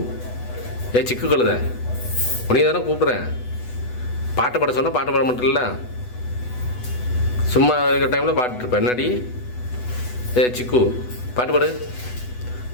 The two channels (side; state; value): right; late; 8.1 ms